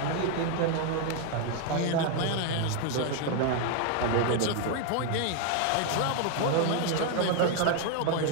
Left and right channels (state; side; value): different; both; correlation 0.01